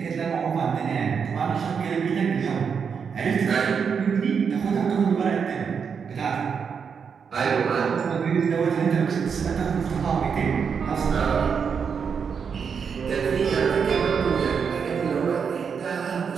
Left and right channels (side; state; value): left; quieter; 6.4 dB